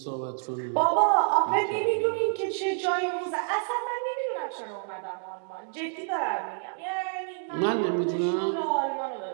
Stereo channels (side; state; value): left; silent; digital silence